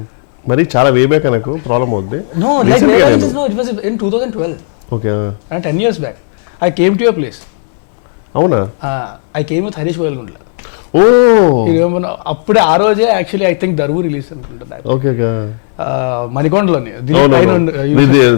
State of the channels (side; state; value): right; silent; 73 dB below the other